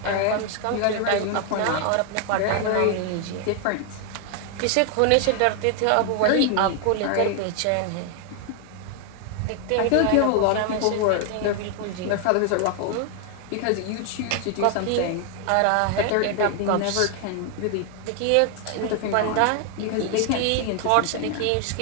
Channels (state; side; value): different; both; correlation 0.00